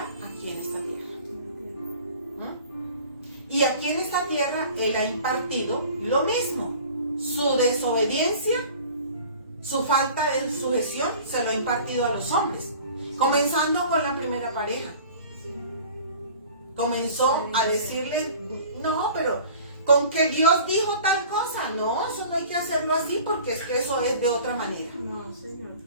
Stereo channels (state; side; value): inverted; both; correlation -0.44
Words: aquí en esta tierra. Y aquí en esta tierra Él ha impartido lo mismo. Su desobediencia, su falta de sujeción, se lo ha impartido a los hombres. Comenzando con la primera pareja. Comenzó a decirle, no, pero con que Dios dijo tal cosa. No, eso no hay que hacerlo así porque es que eso es de otra manera. No, Señor.